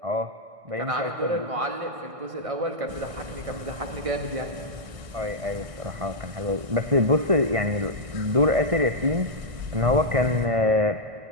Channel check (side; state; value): left; late; 1.6 ms